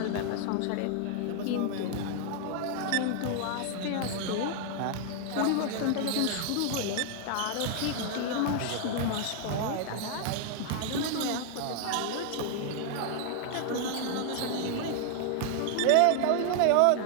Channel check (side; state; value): both; different; correlation 0.00